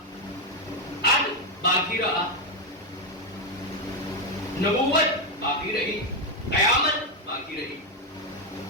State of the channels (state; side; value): normal; both; correlation 0.05